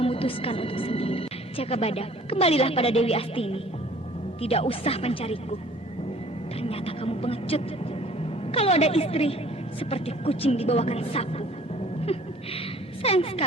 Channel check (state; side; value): normal; both; correlation 0.53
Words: untuk sendiri. Jaka Badak, kembalilah pada Dewi Astini. Tidak usah mencariku. Ternyata kamu pengecut. Kalau ada istri, seperti kucing dibawakan sapu. Sayang